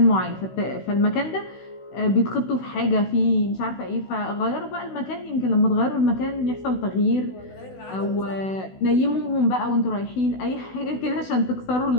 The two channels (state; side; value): late; right; 16 ms